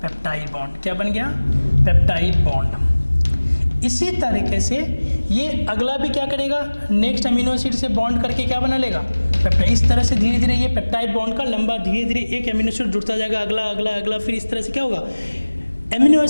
पेप्टाइड बॉन्ड। क्या बन गया? Peptide bond. इसी तरीके से ये अगला भी क्या करेगा, नेक्स्ट अमीनो एसिड से बॉन्ड करके क्या बना लेगा, पेप्टाइड। इस तरह से धीरे धीरे ये पेप्टाइड बॉन्ड का लंबा धीरे धीरे एक अमीनो एसिड जुड़ता जाएगा, अगला अगला अगला, फिर इस तरह से क्या होगा, एमिनो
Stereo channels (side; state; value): both; inverted; correlation -1.00